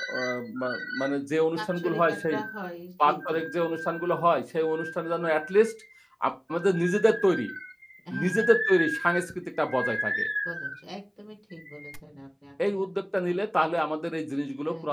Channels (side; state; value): both; identical; correlation 1.00